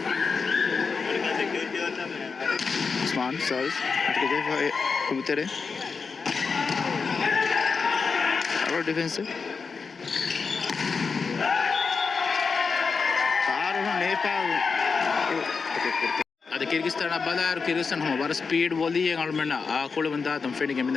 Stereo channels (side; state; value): right; quieter; 5.0 dB